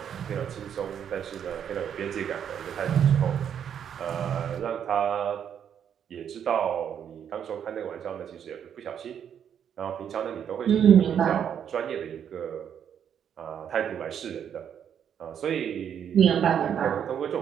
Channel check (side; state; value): left; quieter; 8.6 dB